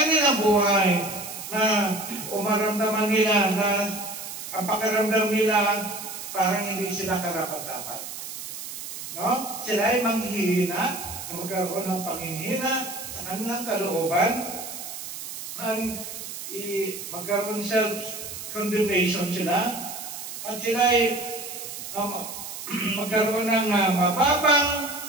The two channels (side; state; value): right; noise; hiss, 9 dB below the sound